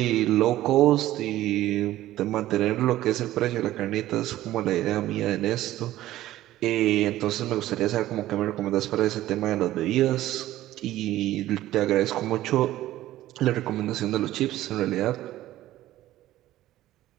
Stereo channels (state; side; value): quieter; left; 14.7 dB